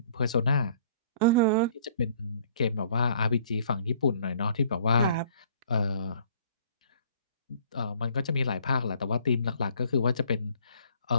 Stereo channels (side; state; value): both; inverted; correlation -0.57